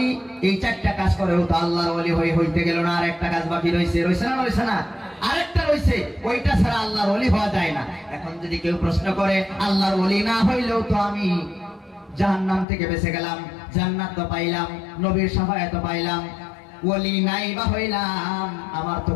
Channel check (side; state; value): right; drops out; at 12.7 s